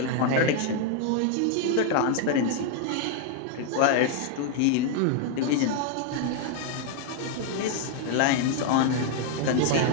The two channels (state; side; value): different; both; correlation 0.00